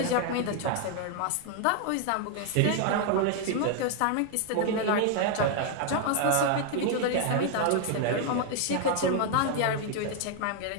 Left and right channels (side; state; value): both; different; correlation 0.00